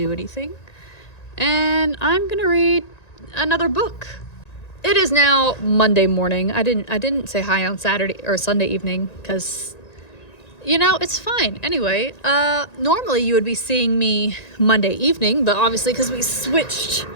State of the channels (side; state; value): right; late; 1.9 ms